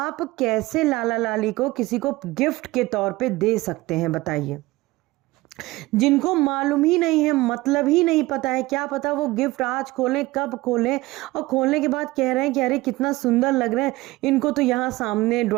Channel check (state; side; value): quieter; left; 19.9 dB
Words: कैसे लाला लाली को किसी को गिफ्ट के तौर पे दे सकते हैं, बताइए? जिनको मालूम ही नहीं है, मतलब ही नहीं पता है, क्या पता वो गिफ्ट आज खोलें, कब खोलें, और खोलने के बाद कह रहे हैं कि अरे कितना सुंदर लग रहे हैं, इनको तो यहाँ सामने